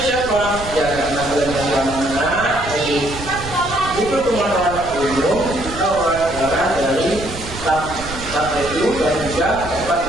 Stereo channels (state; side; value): noise; right; rumble, 12 dB below the sound